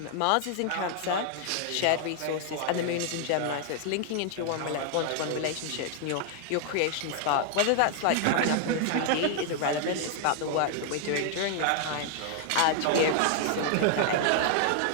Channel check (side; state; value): both; different; correlation 0.00